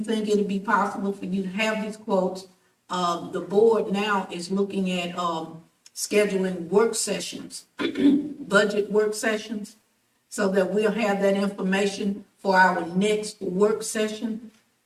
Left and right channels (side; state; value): both; identical; correlation 1.00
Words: it'll be possible for you to have these quotes? The board now is looking at, scheduling work sessions, budget work sessions, so that we'll have that information for our next work session